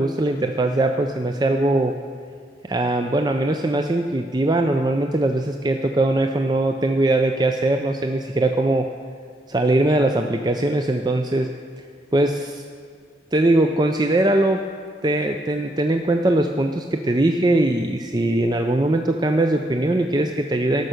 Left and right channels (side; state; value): both; normal; correlation 0.75